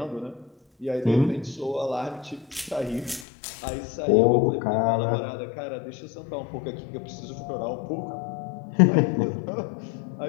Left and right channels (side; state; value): right; drops out; at 3.2 s